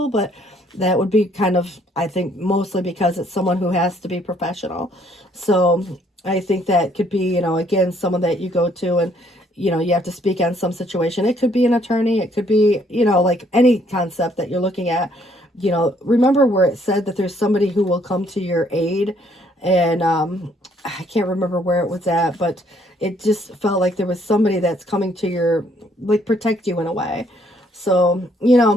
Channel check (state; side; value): normal; both; correlation 0.66